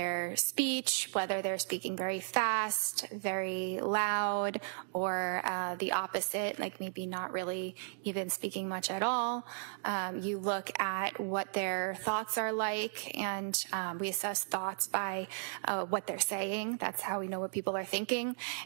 speech, whether they're speaking very fast, very loud, or the opposite, like maybe not really even speaking much at all. You look at what their thoughts are like, and we assess thoughts by what they're saying. That's how we know what people are thinking,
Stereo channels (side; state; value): left; silent; digital silence